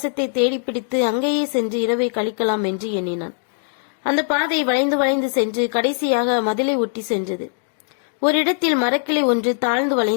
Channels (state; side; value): silent; right; 64 dB below the other